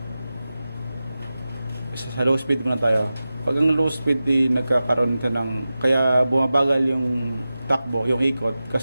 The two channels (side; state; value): both; inverted; correlation -0.95